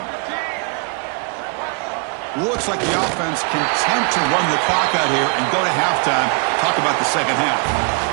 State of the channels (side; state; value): left; quieter; 35.3 dB